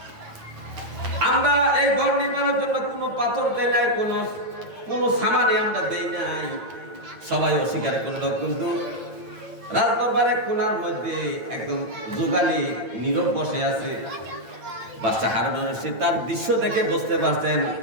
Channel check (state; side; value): late; left; 9.0 ms